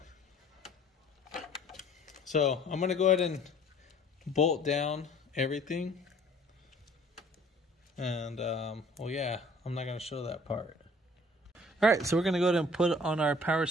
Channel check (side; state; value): both; normal; correlation 0.53